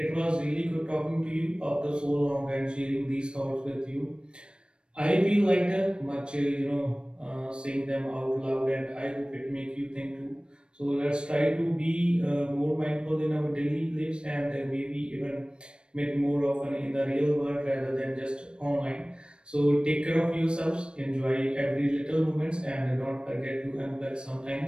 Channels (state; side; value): late; left; 0.054 ms